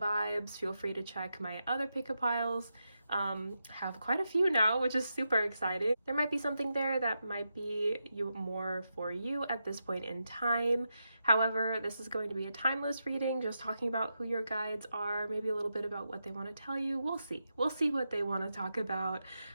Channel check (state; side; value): inverted; both; correlation -0.87